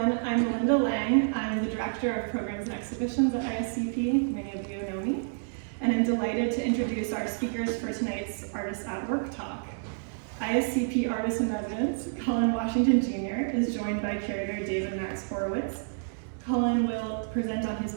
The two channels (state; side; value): silent; left; 59 dB below the other